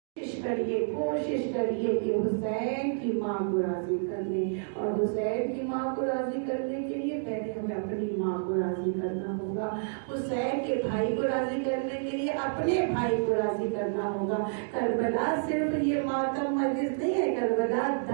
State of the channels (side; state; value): left; silent; digital silence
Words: کوشش کریے کہ حسین کی ماں کو راضی کر لیں، اور حسین کی ماں کو راضی کرنے کے لیے پہلے ہمیں اپنی ماں کو راضی کرنا ہوگا، حسین کے بھائی کو راضی کرنے کے لیے اپنے بھائی کو راضی کرنا ہوگا۔ کربلا صرف یہ ماتم مجلس نہیں ہے، کربلا